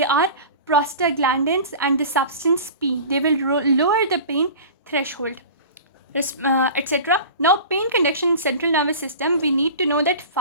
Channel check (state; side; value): inverted; both; correlation -0.37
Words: are prostaglandins and the substance P. They will lower the pain threshold, etc. Now, pain conduction in central nervous system, we need to know that